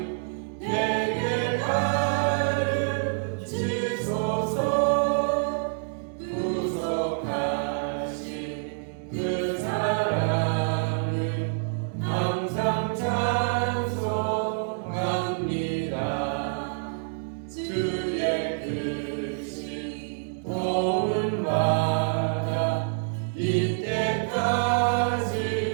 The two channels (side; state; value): left; silent; digital silence